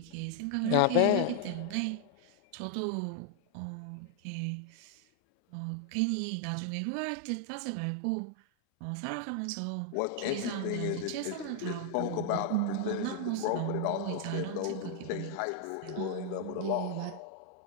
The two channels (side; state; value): both; different; correlation 0.00